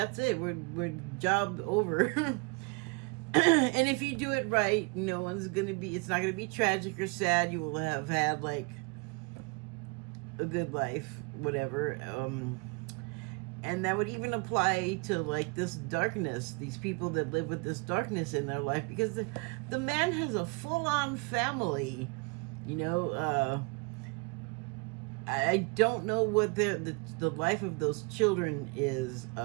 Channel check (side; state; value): left; quieter; 31.1 dB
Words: it. We're job over. And if you do it right, no one's gonna be. It's not gonna be tragic or sad. You will have had like a good life, whatever. And that would even apply to like this darkness, these people that live with this darkness in their life, because the man has a full-on family, you know. I don't know what the life of those children is.